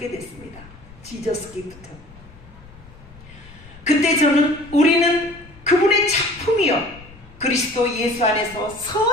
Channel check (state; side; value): noise; left; rumble, 21 dB below the sound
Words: 됐습니다. 지저스 기프트. 그때 저는 우리는 그분의 작품이요, 그리스도 예수 안에서